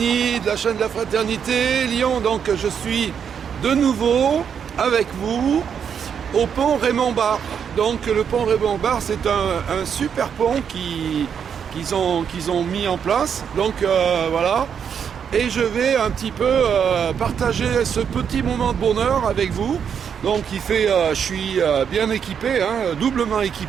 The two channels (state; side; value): quieter; left; 7.5 dB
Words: de la chaîne de la Fraternité Lyon. Donc je suis de nouveau avec vous au pont Raymond-Barre. Donc le pont Raymond-Barre, c'est un super pont qu'ils ont mis en place. Donc voilà, et je vais un petit peu partager ce petit moment de bonheur avec vous. Donc je suis bien équipé, doublement